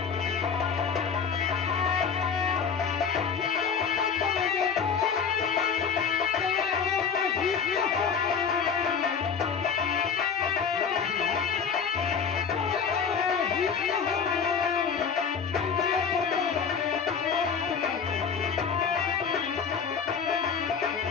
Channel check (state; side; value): quieter; right; 6.4 dB